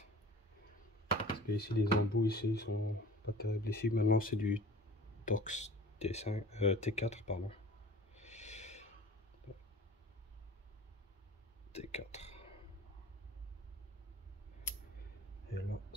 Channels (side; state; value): both; normal; correlation 0.43